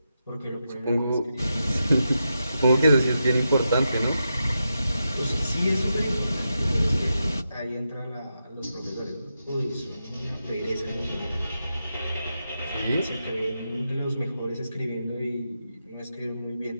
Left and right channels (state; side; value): inverted; both; correlation -0.87